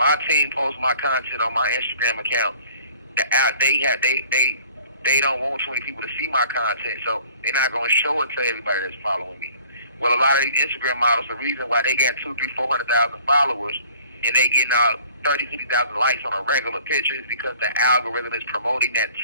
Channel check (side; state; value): both; inverted; correlation -0.53